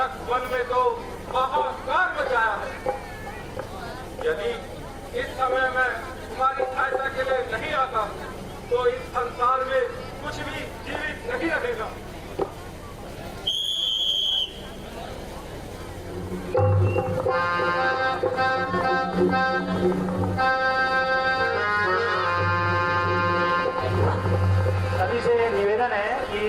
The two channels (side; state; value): both; identical; correlation 1.00